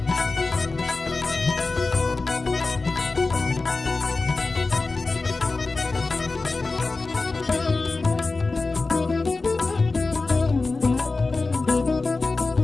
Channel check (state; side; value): quieter; right; 3.7 dB